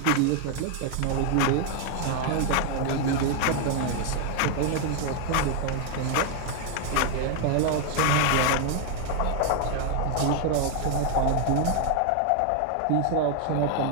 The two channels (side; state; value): both; different; correlation 0.00